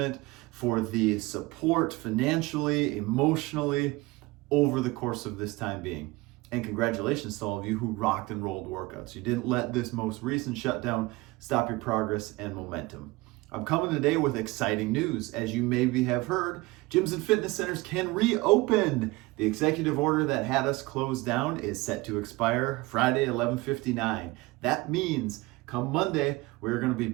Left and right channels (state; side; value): quieter; left; 21.9 dB